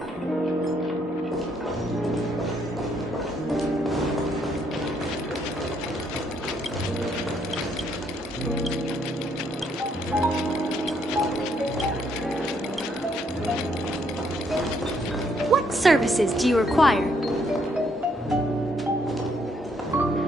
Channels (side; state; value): both; normal; correlation 0.71